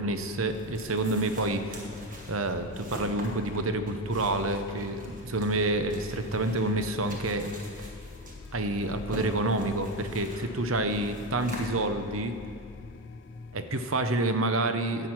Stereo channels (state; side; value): normal; both; correlation 0.14